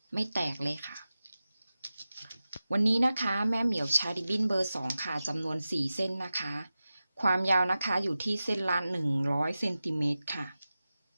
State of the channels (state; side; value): inverted; both; correlation -0.94